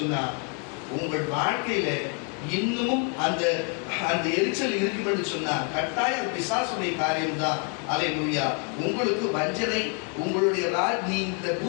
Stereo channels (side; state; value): right; quieter; 38.0 dB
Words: உங்கள் வாழ்க்கையில இன்னமும் அந்த எரிச்சல் இருக்கும் என்று சொன்னா கட்டாயம் பிசாசுடைய காரியம் தான். ஹல்லேலூயா. உங்களுக்கு வஞ்சனை, உங்களுடைய நீ இந்த